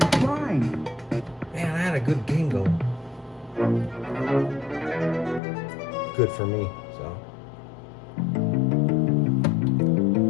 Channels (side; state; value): right; drops out; at 5.4 s